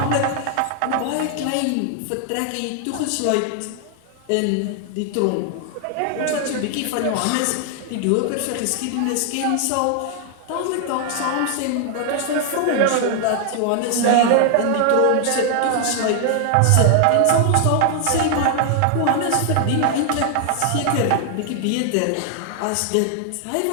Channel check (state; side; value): different; both; correlation 0.00